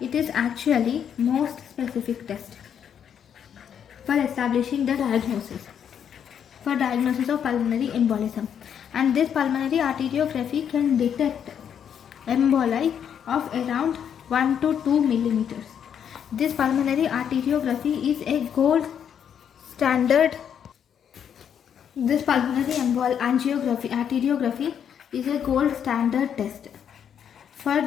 is actually most specific test for establishing the diagnosis of pulmonary embolism, and this pulmonary arteriography can detect emboli of around 1 to 2 millimeters. This pulmonary arteriography is a gold standard. This pulmonary arteriography is a gold standard test for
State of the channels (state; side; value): quieter; right; 8.4 dB